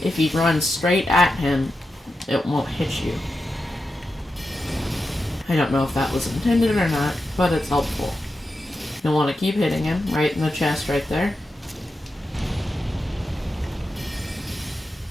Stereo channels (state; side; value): normal; both; correlation 0.89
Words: if he runs straight at him, it won't hit you. I don't know if that was intended or not, but it's helpful. You'll want to keep hitting him right in the chest right there.